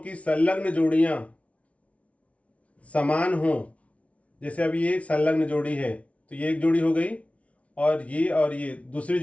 संलग्न जोड़ियां समान हो, जैसे अब ये संलग्न जोड़ी है तो ये एक जोड़ी हो गई और ये दूसरी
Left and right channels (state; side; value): late; right; 0.064 ms